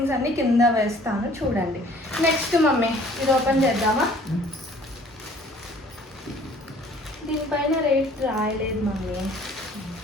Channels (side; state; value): both; normal; correlation 0.54